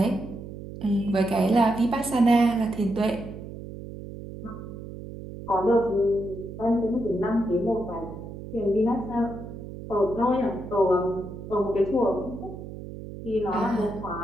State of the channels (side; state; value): right; noise; hum, 11 dB below the sound